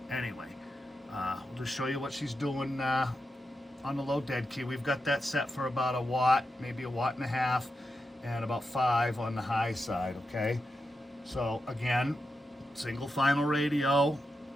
anyway, we'll just show you what she's doing on the low dead key. We've got that set for about a watt, maybe 1.5 watts, and about 5 on the high side. Okay, so again, single final radio.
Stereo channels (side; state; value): both; normal; correlation 0.88